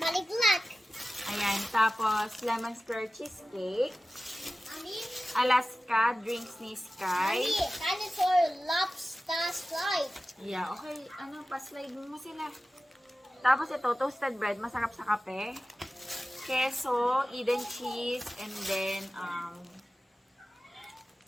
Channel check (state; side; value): normal; both; correlation 0.95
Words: Ayan, tapos lemon square cheesecake. Mommy. Alaska drinks ni Sky. Mommy. Dinosaur lobster slide. Yeah, okay. Pa-slide mo sila. Tapos ito, toasted bread. Masarap sa kape. Queso, Eden cheese, and then,